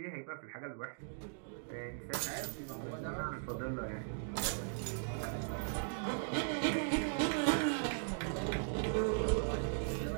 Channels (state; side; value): silent; left; digital silence